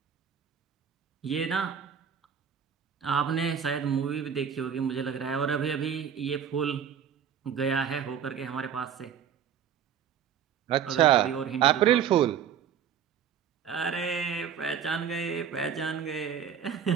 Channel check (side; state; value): left; quieter; 8.2 dB